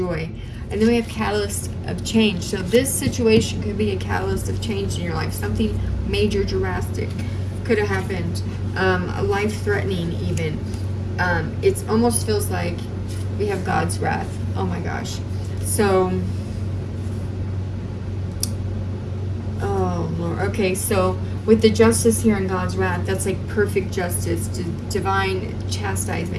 And then we have catalyst of change. So this situation could be a catalyst of change in your life. Something major, drastic could have happened. Life-threatening even. It almost feels like we have God's wrath. Oh my gosh. So, oh Lord. Okay, so with the justice here in God's wrath, that's like perfect justice, divine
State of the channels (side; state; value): both; identical; correlation 1.00